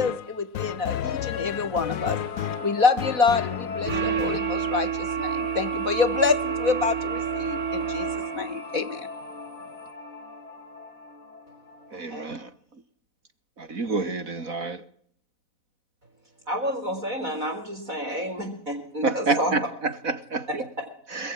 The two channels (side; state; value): left; late; 4.1 ms